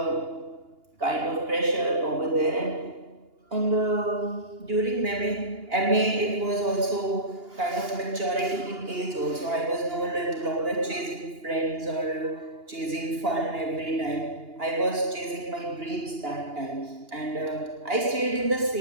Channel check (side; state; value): left; late; 2.8 ms